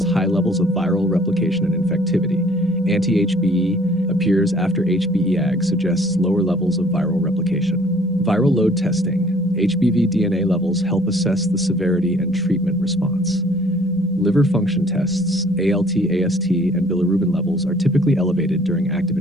high levels of viral replication and infectivity. Anti-HBe appears after HBeAg suggests lower levels of viral replication. Viral load testing. HBV DNA levels help assess the severity and treatment response. Liver function tests, ALT, AST, and bilirubin levels are typically elevated during active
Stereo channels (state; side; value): normal; both; correlation 0.56